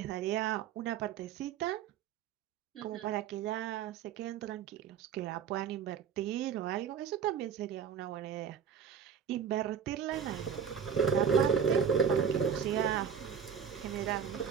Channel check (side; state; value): left; quieter; 7.3 dB